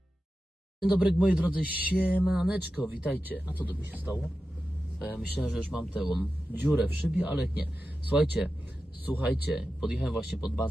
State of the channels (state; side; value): normal; both; correlation 0.92